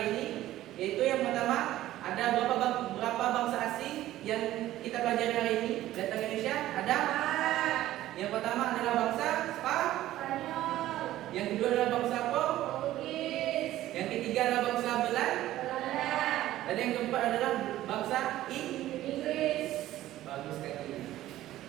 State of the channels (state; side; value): quieter; left; 14.5 dB